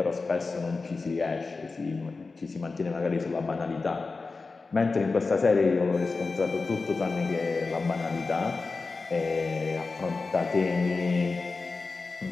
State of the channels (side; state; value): right; quieter; 4.0 dB